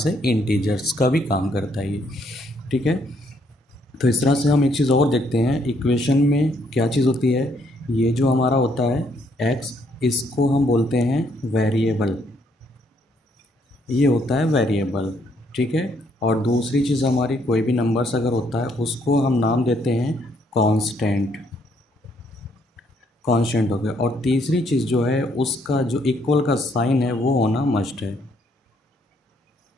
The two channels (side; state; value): both; normal; correlation 0.70